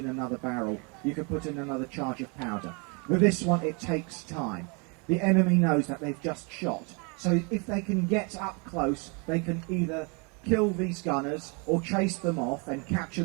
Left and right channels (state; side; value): quieter; left; 33.0 dB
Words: another barrel. You could put in another charge of powder. With this one, it takes time. The enemy knows that they've just shot. So if they can get up close, they can either kill these gunners or chase them off and capture